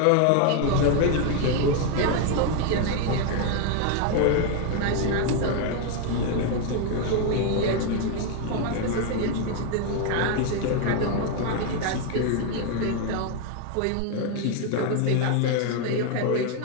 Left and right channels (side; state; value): both; different; correlation 0.01